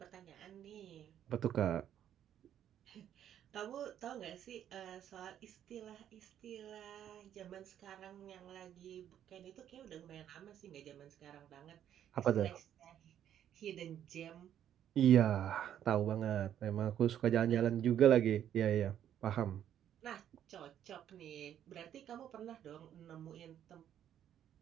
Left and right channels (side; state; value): left; quieter; 10.3 dB